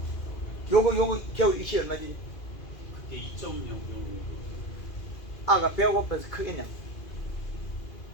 요거 겨울 이 시 얼마 주지? 그게 2.0 정도. 아가 배가 고파서 크겠냐?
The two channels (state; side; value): late; right; 2.4 ms